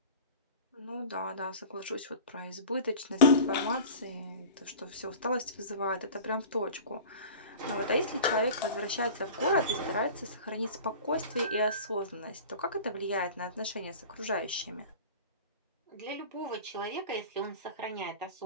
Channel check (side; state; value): both; inverted; correlation -0.38